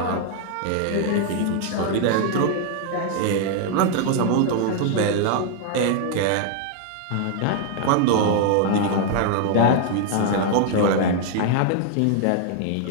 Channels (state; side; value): different; both; correlation 0.00